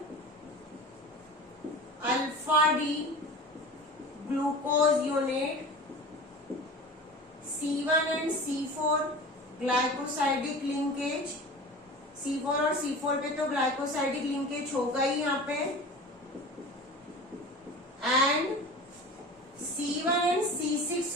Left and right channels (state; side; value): normal; both; correlation 0.35